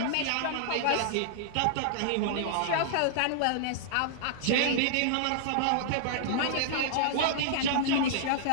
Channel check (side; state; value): both; different; correlation -0.01